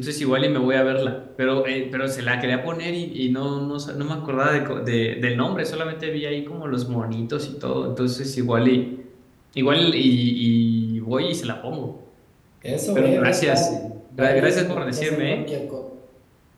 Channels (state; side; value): identical; both; correlation 1.00